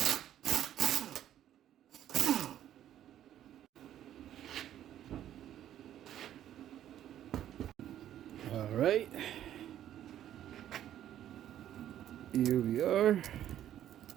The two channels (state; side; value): quieter; left; 11.4 dB